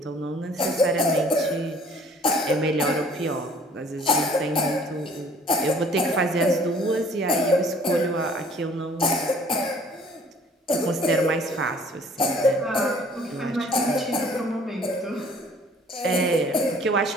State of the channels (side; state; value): both; normal; correlation 0.55